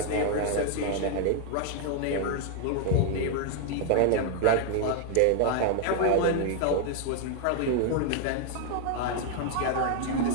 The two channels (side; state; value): both; different; correlation 0.00